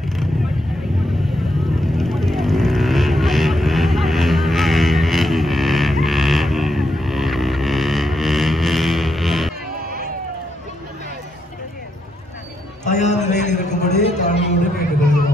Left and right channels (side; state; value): both; normal; correlation 0.80